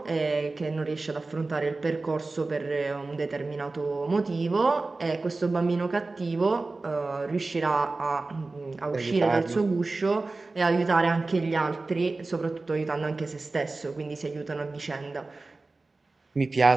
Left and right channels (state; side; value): quieter; left; 3.5 dB